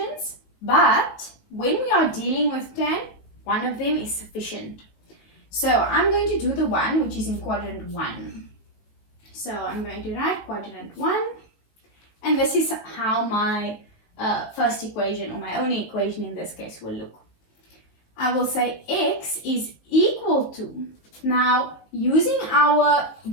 but when we are dealing with tan, one of them is sufficient. So I'm going to do the one which is in quadrant 1. So I'm going to write quadrant 1, and this is how my first equation, or my only equation in this case, will look. I will say x is equal to, now using our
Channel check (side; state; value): right; late; 19 ms